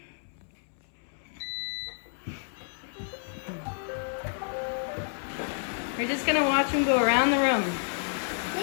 We're just gonna watch them go around the room.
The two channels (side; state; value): right; silent; 58 dB below the other